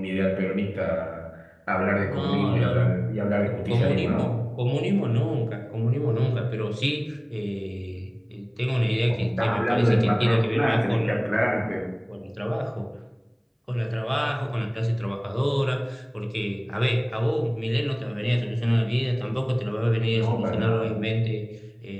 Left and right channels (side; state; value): both; identical; correlation 1.00